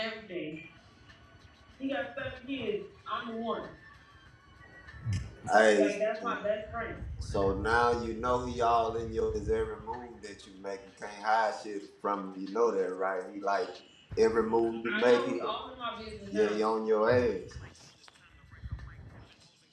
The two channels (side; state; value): both; identical; correlation 1.00